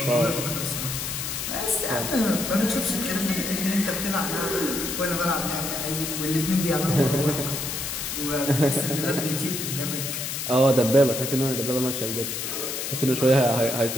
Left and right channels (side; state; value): left; noise; hiss, 4 dB below the sound